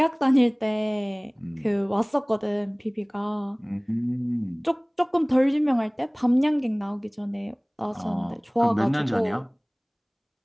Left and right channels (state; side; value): identical; both; correlation 1.00